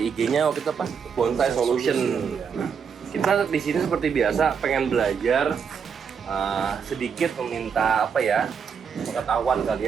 IG-nya waktu itu apa? Bonsai Solution. Kita di sini seperti biasa pengen belajar sedikit meminta apa ya? Pengetahuan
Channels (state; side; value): quieter; left; 6.6 dB